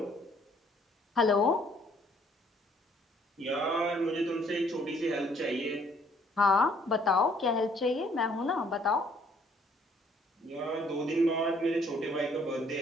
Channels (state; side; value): normal; both; correlation 0.63